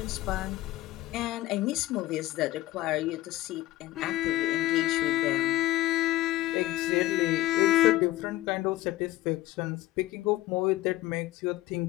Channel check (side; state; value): right; quieter; 16.8 dB